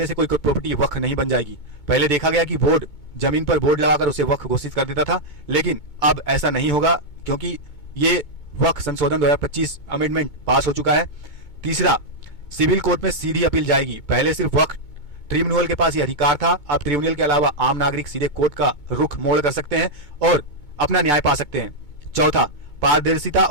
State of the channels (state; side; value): late; right; 2.2 ms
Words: से कोई प्रॉपर्टी वक्फ नहीं बन जाएगी। पहले देखा गया कि बोर्ड जमीन पर बोर्ड लगाकर उसे वक्फ घोषित कर देता था, लेकिन अब ऐसा नहीं होगा, क्योंकि ये वक्फ संशोधन 2025 अमेंडमेंट पास हो चुका है। तीसरा, सिविल कोर्ट में सीधी अपील जाएगी। पहले सिर्फ वक्फ ट्रिब्यूनल के पास ये अधिकार था, अब ट्रिब्यूनल के अलावा आम नागरिक सीधे कोर्ट का रुख मोड़ कर सकते हैं और अपना न्याय पा सकते हैं। चौथा, पारदर्शिता